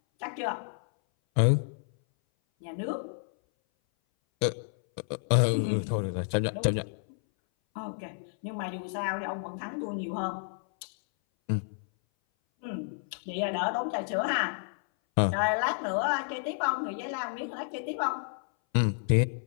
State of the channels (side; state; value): right; silent; 58 dB below the other